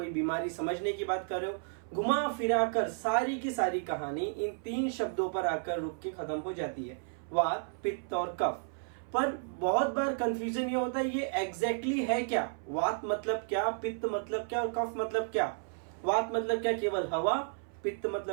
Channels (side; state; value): left; silent; 56 dB below the other